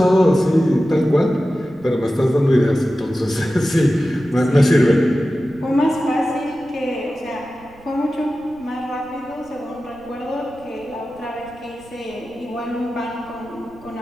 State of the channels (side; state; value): right; noise; rumble, 25 dB below the sound